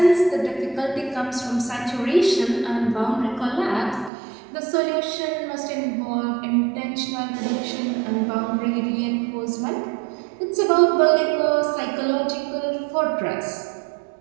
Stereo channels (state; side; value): drops out; left; at 4.1 s